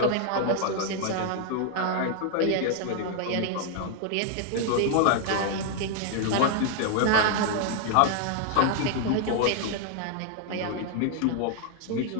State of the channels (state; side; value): different; both; correlation 0.00